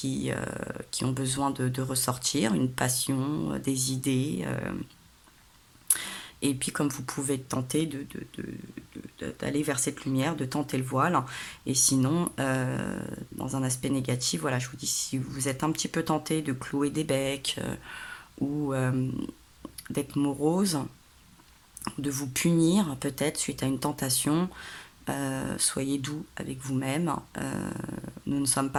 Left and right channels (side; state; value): both; identical; correlation 1.00